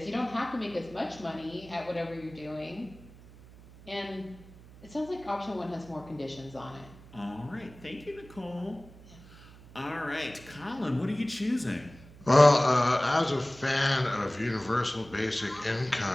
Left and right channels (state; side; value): noise; right; hum, 20 dB below the sound